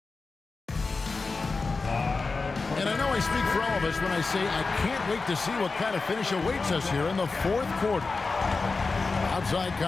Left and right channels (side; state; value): right; quieter; 4.1 dB